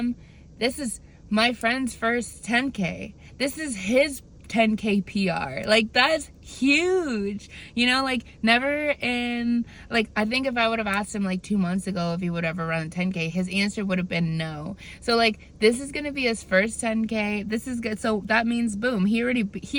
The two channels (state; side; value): identical; both; correlation 1.00